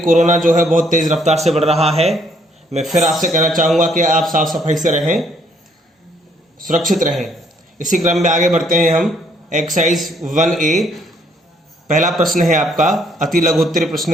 जो है बहुत तेज़ रफ्तार से बढ़ रहा है। मैं फिर आपसे कहना चाहूँगा कि आप साफ सफाई से रहें, सुरक्षित रहें। इसी क्रम में आगे बढ़ते हैं हम। एक्सरसाइज 1A, पहला प्रश्न है आपका अति लघुत्तरीय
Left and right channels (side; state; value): both; normal; correlation 0.67